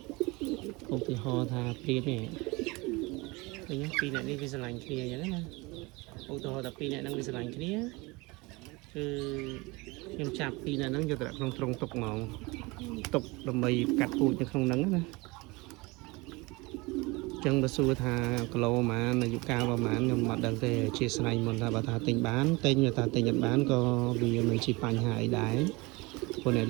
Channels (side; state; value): left; quieter; 24.5 dB